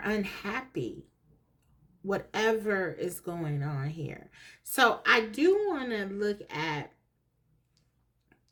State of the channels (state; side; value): identical; both; correlation 1.00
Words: unhappy, whatever is going on here. So I do want to look at